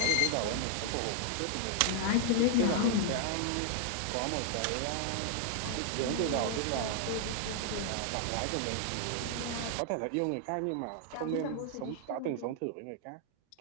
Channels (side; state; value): both; different; correlation 0.00